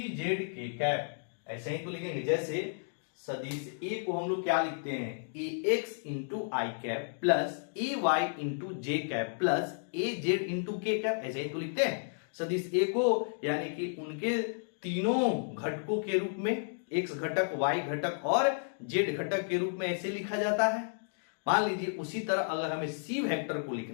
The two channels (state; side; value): silent; right; digital silence